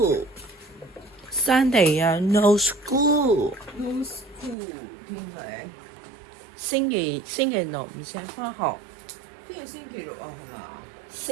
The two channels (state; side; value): drops out; left; at 4.5 s